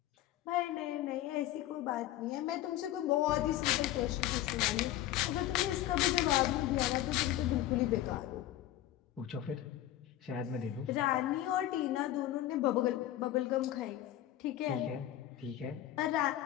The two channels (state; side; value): quieter; right; 13.5 dB